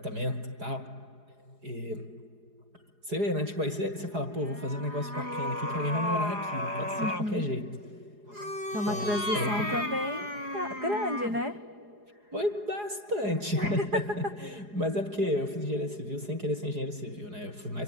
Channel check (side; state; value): left; late; 4.8 ms